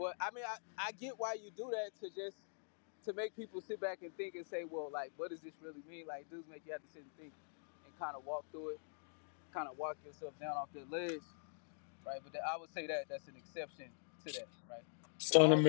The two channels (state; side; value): silent; right; digital silence